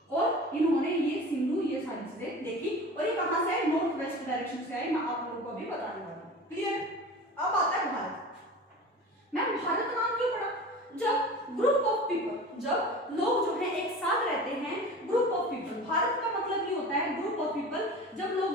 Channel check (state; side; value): normal; both; correlation 0.36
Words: और इन्होंने ये सिंधु ये सारी चीजें देखी। और ये कहां से आए? नॉर्थ वेस्ट डायरेक्शन से आए। मैं आप लोगों को अभी बताने वाला हूं। क्लियर? अब आता है भारत। मैम भारत नाम क्यों पड़ा? जब ग्रुप ऑफ पीपल, जब लोग जो है एक साथ रहते हैं, ग्रुप ऑफ पीपल, भारत का मतलब ये होता है ग्रुप ऑफ पीपल, जब लोग